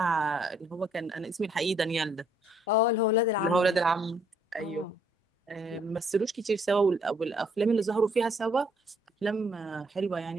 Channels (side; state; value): both; normal; correlation 0.66